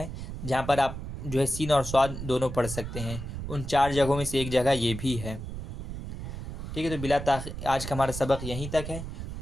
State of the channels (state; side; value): noise; right; rumble, 7 dB below the sound